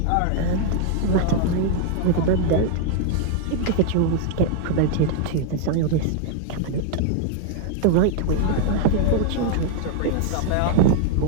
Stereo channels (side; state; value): both; different; correlation 0.00